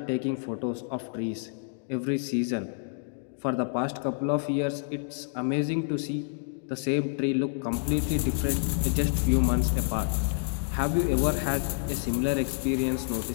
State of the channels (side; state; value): right; silent; digital silence